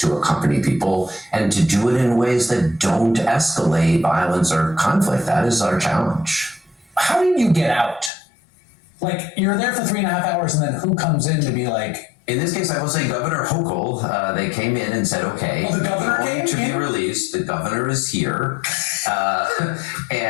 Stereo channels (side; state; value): right; drops out; at 8.1 s